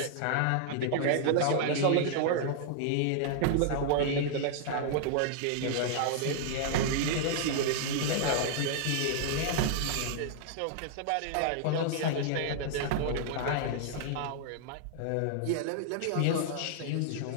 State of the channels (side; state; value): both; different; correlation -0.01